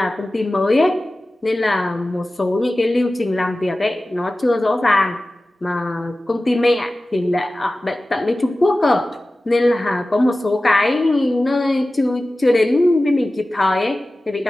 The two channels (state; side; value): normal; both; correlation 0.96